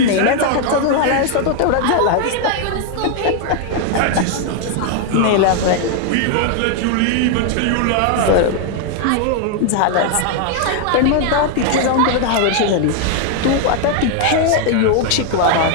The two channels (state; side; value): different; both; correlation 0.00